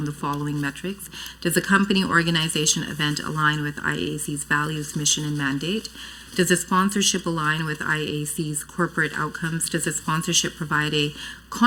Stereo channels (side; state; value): both; identical; correlation 1.00